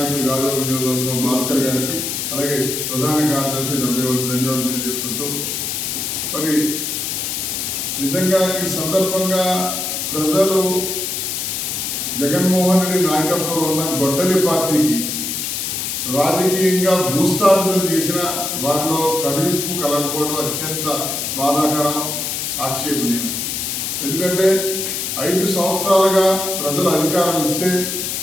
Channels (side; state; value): left; noise; hiss, 2 dB below the sound